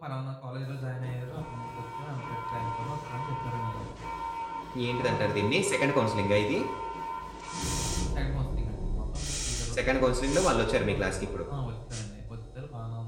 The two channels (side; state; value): both; identical; correlation 1.00